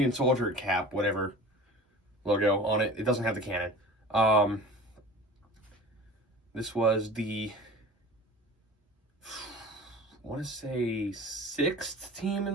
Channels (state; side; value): normal; both; correlation 0.39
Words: Soldier cap, whatever logo on it. It doesn't have the cannon. This was the, I want to say 6th team in